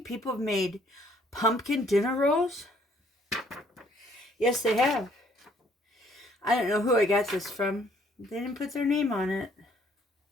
people have made pumpkin dinner rolls? Yes, they have. I don't know who I got this from. They didn't put their name on it.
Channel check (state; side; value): normal; both; correlation 0.63